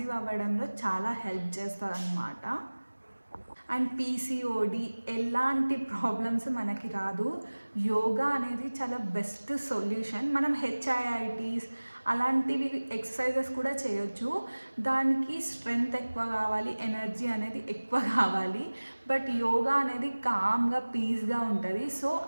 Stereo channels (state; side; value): inverted; both; correlation -1.00